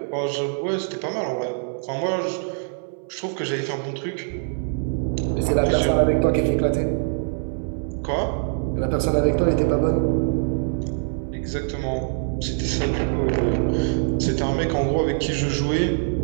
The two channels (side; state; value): left; silent; 63 dB below the other